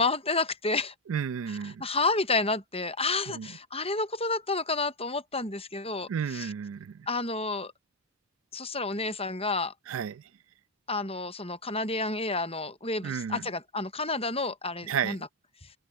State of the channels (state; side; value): normal; both; correlation 0.01